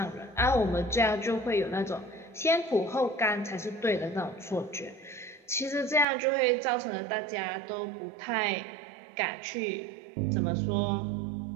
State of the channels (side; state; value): left; drops out; at 6.1 s